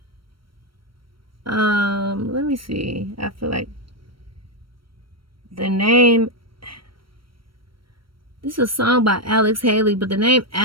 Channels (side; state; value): left; late; 0.74 ms